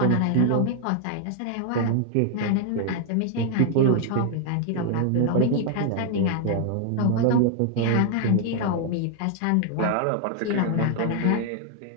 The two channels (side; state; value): both; different; correlation 0.00